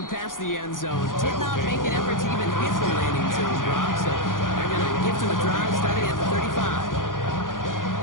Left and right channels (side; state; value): right; late; 0.89 ms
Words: past the end zone. Did not make an effort to even hit the landing zone, Brock. So they're going to give to the drive starting at the 35.